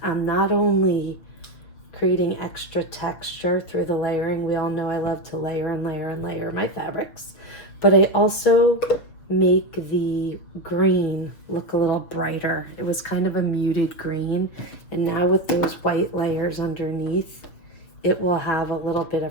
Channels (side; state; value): right; late; 6.8 ms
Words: I'm not only creating extra texture through the layering. We all know I love to layer and layer and layer my fabrics, but I also make the green look a little brighter. It was kind of a muted green, and now with those white layers underneath, it will have a little bit